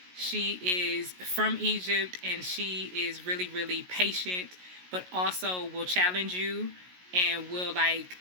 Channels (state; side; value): late; left; 16 ms